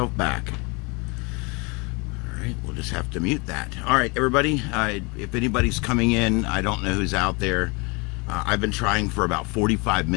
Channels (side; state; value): right; quieter; 28.6 dB